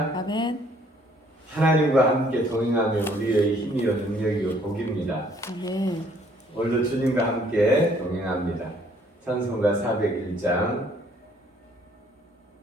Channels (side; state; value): both; normal; correlation 0.62